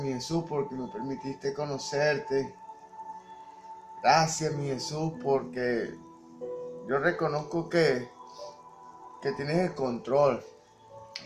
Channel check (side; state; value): both; identical; correlation 1.00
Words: Jesús porque me permitiste conocerte. Gracias mi Jesús porque yo reconozco que tienes el control